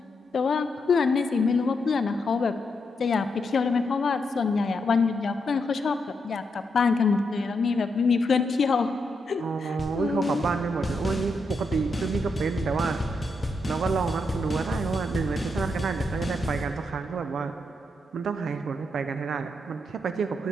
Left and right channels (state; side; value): normal; both; correlation 0.82